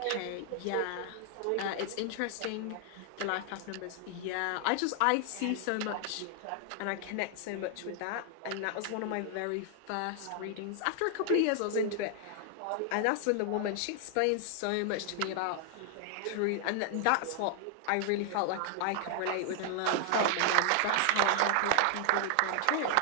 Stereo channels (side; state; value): both; different; correlation 0.00